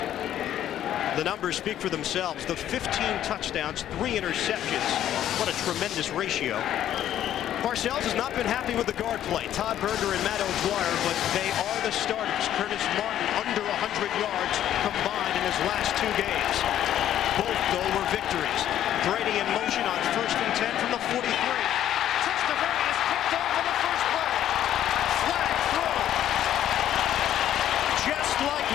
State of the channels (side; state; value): right; quieter; 11.5 dB